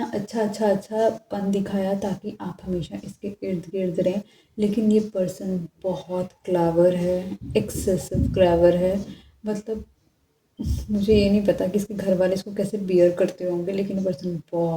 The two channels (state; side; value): identical; both; correlation 1.00